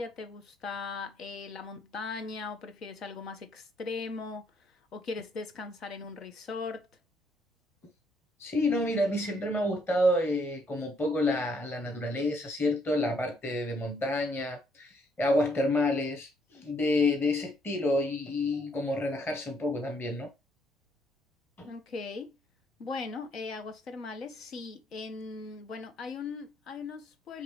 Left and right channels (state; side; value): normal; both; correlation 0.70